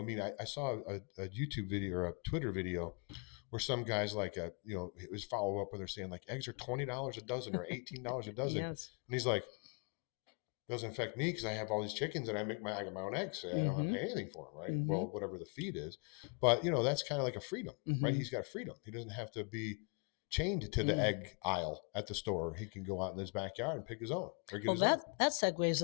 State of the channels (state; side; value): quieter; right; 37.2 dB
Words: mean, I saw a YouTube video or a Twitter video where some guys like it was follow up where they're saying like eggs are $20 a dozen or $18 a dozen, Yes. and he's like, doesn't affect me because I have all these chickens and I get my own eggs. So I don't have to Mm-hmm. pay anything for them, right? Mm-hmm. Well, whatever the feed is, but that's kind of like a freedom, right? Mm-hmm. He's got freedom. He doesn't have to be chained to the Mm. egg aisle at the store. He can go out in his backyard and pick his own or get Well, his own. that segues